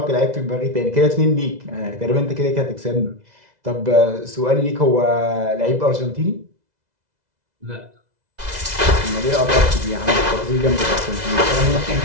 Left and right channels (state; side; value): late; left; 2.0 ms